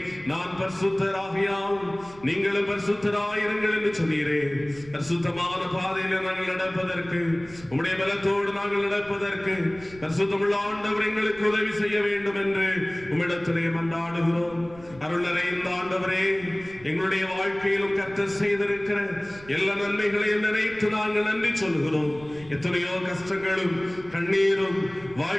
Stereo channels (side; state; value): right; noise; rumble, 21 dB below the sound